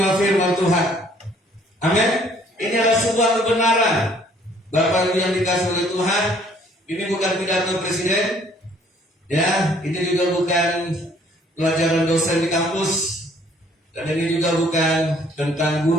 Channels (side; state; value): both; normal; correlation 0.60